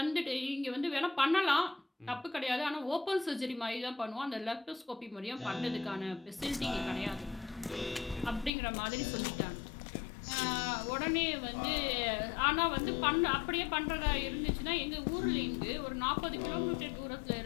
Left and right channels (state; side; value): drops out; right; at 8.5 s